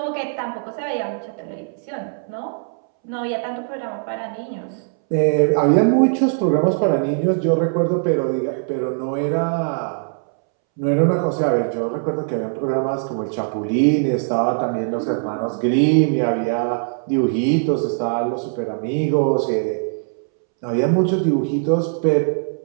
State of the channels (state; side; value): silent; left; 65 dB below the other